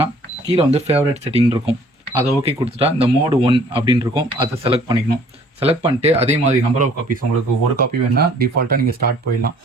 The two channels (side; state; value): both; normal; correlation 0.56